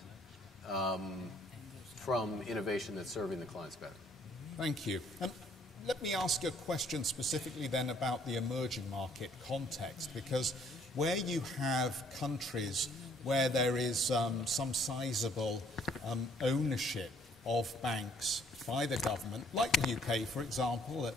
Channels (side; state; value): both; normal; correlation 0.63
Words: from innovation that's serving the clients better. Thank you. And let me ask a question specifically then about the emerging market context, because where you have countries where there is some sizable ownership of banks by the government, like the UK, for example,